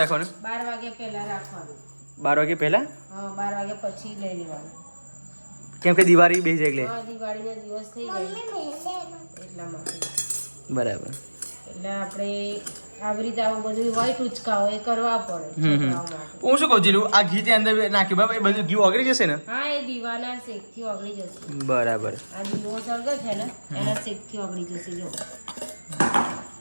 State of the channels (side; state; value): both; inverted; correlation -1.00